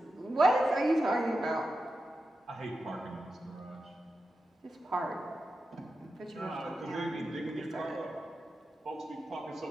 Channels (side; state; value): both; normal; correlation 0.90